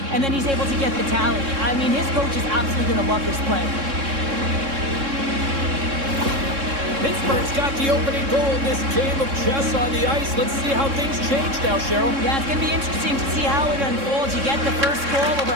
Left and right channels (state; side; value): late; left; 3.6 ms